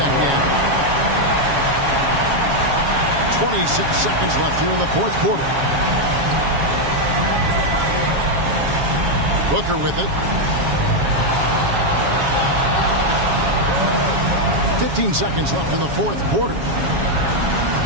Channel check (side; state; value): left; late; 7.2 ms